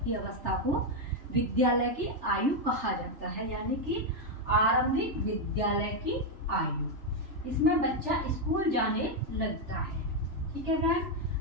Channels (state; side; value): late; left; 3.4 ms